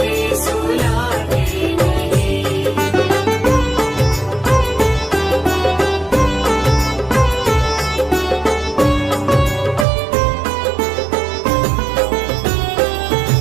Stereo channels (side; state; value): left; drops out; at 9.9 s